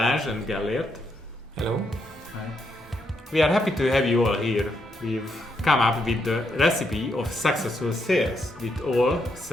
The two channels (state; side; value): normal; both; correlation 0.78